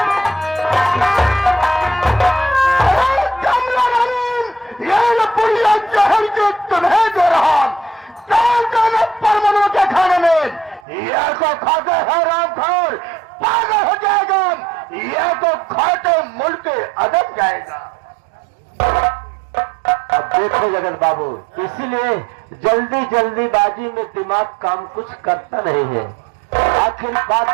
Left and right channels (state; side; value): drops out; left; at 10.9 s